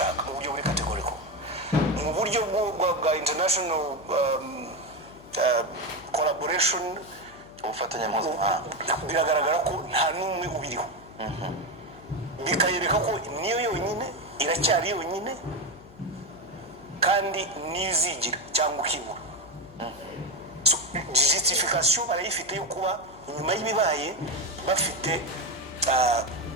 mu buryo buri kategoriko mu buryo bwa international collaboration ubufatanye mpuzamahanga biragaragara ko nta n'umwe ubiriho bikayereka ko niyo yonyine iracyari yonyine kandi nizigira cyangwa ukibura justification barayifite yo kuba nyuma y'ibibaye bafite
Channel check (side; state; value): left; noise; hum, 21 dB below the sound